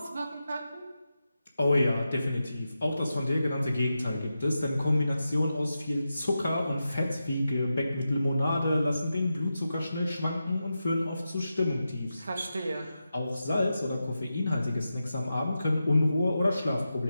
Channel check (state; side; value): inverted; both; correlation -0.90